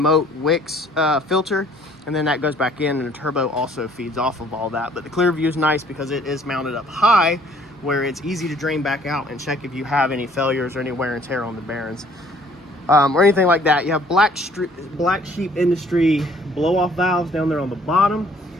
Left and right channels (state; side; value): normal; both; correlation 0.59